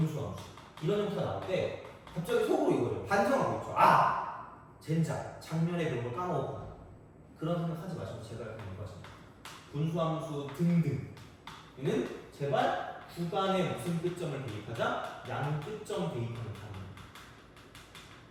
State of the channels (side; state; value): both; identical; correlation 1.00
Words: 이런 형태가 나올 때 갑자기 속으로 이거를 반성하고 있죠. 아! 젠장, 작년에 그런 걸 까먹었구나. 그런 생각하지 마시고 제가 그냥 이거 하십니다. 분수함수 등등 얘는 제발 구간에 무슨 끝점을 대입하자? 양 끝점 대입하는 단위.